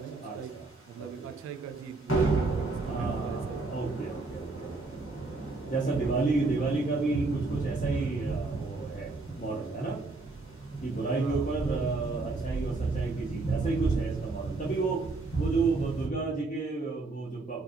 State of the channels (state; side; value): quieter; left; 3.5 dB